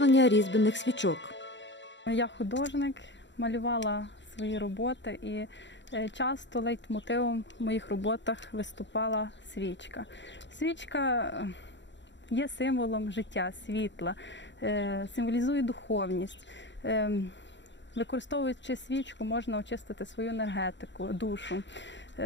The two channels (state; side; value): late; right; 0.53 ms